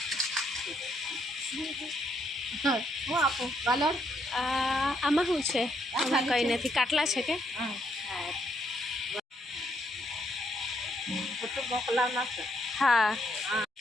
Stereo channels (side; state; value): both; normal; correlation 0.74